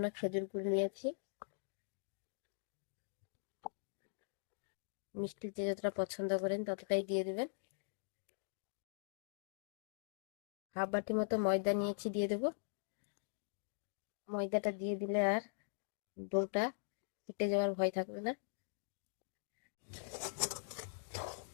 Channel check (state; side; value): silent; right; digital silence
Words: খেজুর গুড় নিয়েছি। মিষ্টি যে যতটা পছন্দ করেন ততটাই দিয়ে দেবেন। 1/2 বাটি মতো ময়দা নিয়েছি, দিয়ে দেব। ময়দাটা দিয়ে দিলে আর ডোটা ফেটে যাওয়ার ভয় থাকবে না।